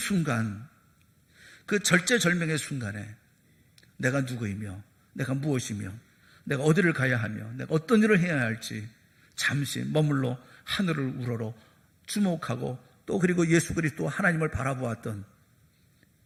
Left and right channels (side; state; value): both; identical; correlation 1.00